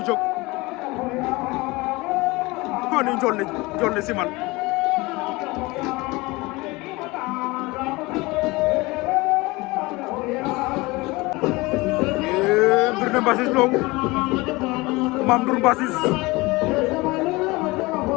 jóg ko ni njool ne Simal mbir ne Mbassis Lo Mame Ndour Mbassis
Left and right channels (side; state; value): right; quieter; 22.8 dB